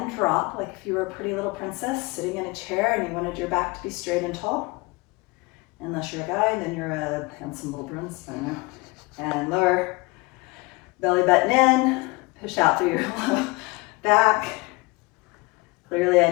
drop, like if you were a pretty little princess sitting in a chair and you wanted your back to be straight and tall. Unless you're a guy, then you're a handsome little prince, I don't know. And lower, belly button in, push out through your low back. Clearly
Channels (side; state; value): right; quieter; 25.6 dB